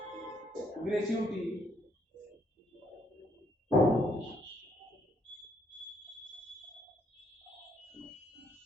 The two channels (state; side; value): normal; both; correlation 0.70